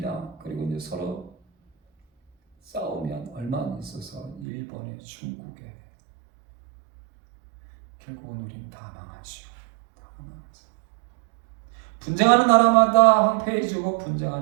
그리고 이제 서로 싸우면 얼마 안 있어서 일본에, 중국에, 결국은 우리는 다 망하죠. 분쟁하는 나라마다 황폐해지고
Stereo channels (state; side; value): drops out; left; at 4.5 s